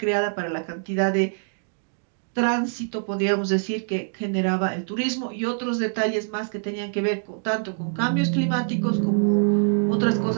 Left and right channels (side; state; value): left; silent; digital silence